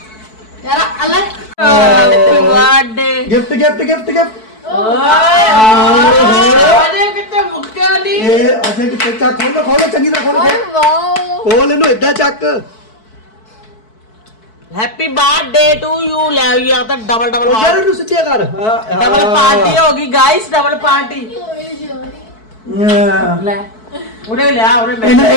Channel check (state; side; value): late; right; 4.6 ms